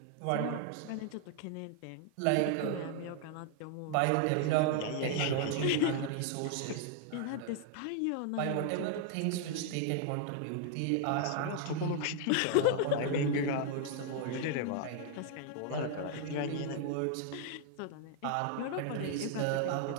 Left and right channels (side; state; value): both; different; correlation 0.00